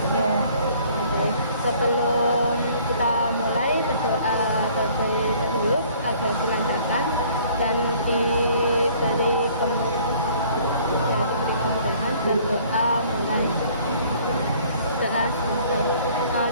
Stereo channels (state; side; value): inverted; both; correlation -0.56